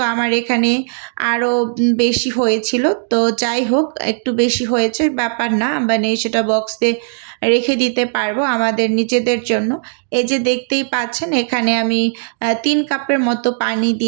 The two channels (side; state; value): left; silent; digital silence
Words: আমার এখানে আরও বেশি হয়েছিল। তো যাই হোক, একটু বেশি হয়েছে ব্যাপার না, মানে সেটা বক্সে রেখে দিতে পারবো আমাদের নিজেদের জন্য। এই যে দেখতেই পাচ্ছেন এখানে আমি 3 কাপের মতো পানি